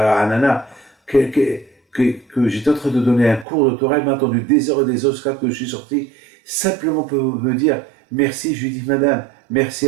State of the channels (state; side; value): drops out; left; at 3.5 s